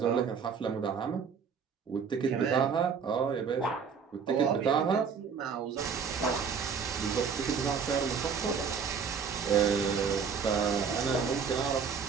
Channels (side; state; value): left; quieter; 6.2 dB